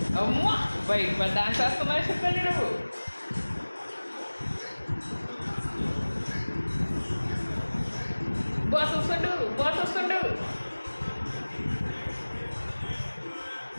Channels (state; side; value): inverted; both; correlation -1.00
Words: అమ్మో బయట మరి డాన్స్ వస్తున్నా చెప్పండి నువ్వు బాస్ వస్తుండు బాస్ వస్తుండు